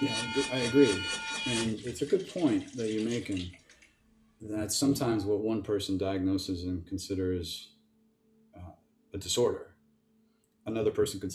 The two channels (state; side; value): identical; both; correlation 1.00